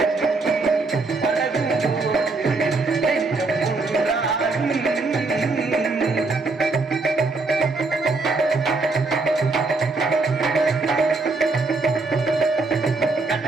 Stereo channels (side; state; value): left; quieter; 3.6 dB